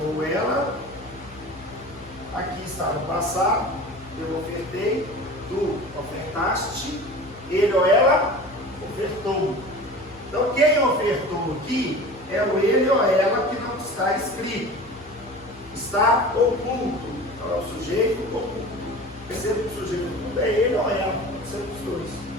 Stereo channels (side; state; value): both; normal; correlation 0.37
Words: ela. Aqui está no passado. Eu ofertei, tu ofertaste, ele ou ela ofertou. Então, quem ofertou aqui é o ele ou ela que não está escrito. Está oculto. Então, é o sujeito oculto. Perceba que o sujeito oculto é ele ou ela, pode ser os dois.